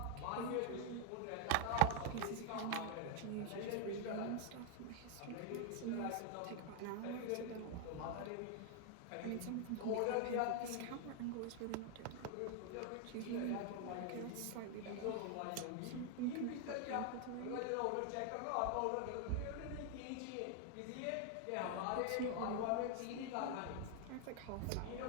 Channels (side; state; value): both; different; correlation 0.01